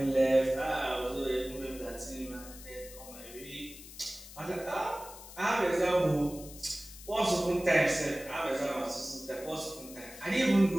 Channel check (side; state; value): left; noise; hiss, 16 dB below the sound